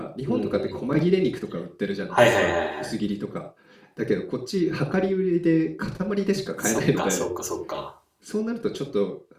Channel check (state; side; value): identical; both; correlation 1.00